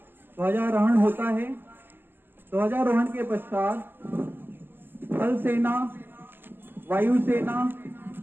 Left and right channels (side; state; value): left; late; 0.10 ms